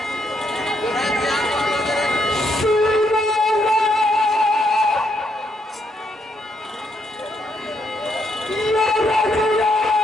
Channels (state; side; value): normal; both; correlation 0.76